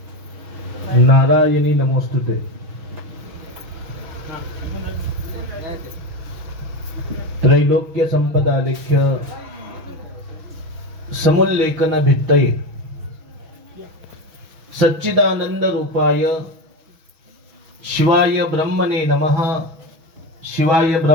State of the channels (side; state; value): left; late; 6.2 ms